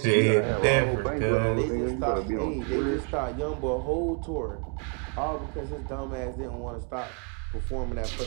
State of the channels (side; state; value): left; quieter; 39.4 dB